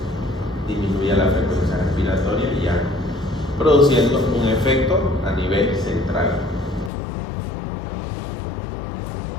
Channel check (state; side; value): drops out; right; at 6.9 s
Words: disminuya la frecuencia respiratoria y ya produciendo un efecto a nivel central.